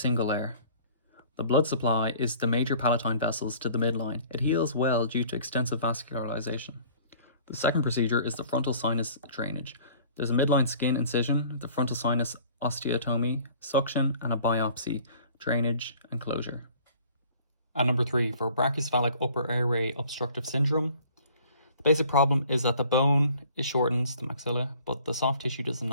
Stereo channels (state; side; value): inverted; both; correlation -0.51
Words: layer. The blood supply is the major palatine vessels to the midline. It heals well due to extensive vascularization. The second procedure is the frontal sinus drainage. There's a midline skin incision, the frontal sinus osteotomy, suction, and a biopsy, drainage, and closure. And number 3, for brachycephalic upper airway obstructive syndrome, the basic problem is that the bone shortens, the maxilla, but the soft tissue does